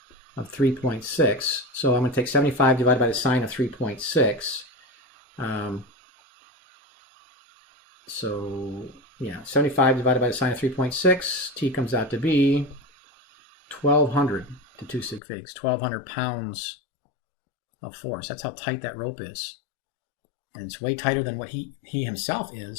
of 3.6. So I'm going to take 75 divided by the sine of 3.6. So yeah, 75 divided by the sine of 3.6. T comes out to be 1,200 to 2 sig figs. 1,200 pounds of force. That's how tight that rope is. And it's way tighter than what he himself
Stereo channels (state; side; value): drops out; right; at 15.2 s